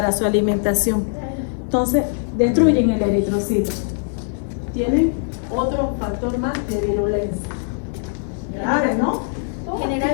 su alimentación. Entonces, destruyen el eritrocito. Tienen otro factor más de virulencia. Grave, ¿no?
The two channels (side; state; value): right; silent; digital silence